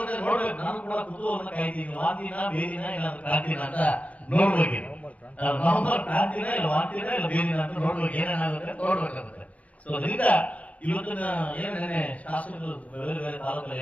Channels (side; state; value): right; late; 0.066 ms